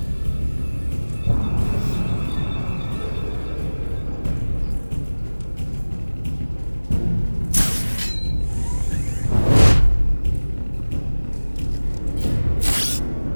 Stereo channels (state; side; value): inverted; both; correlation -1.00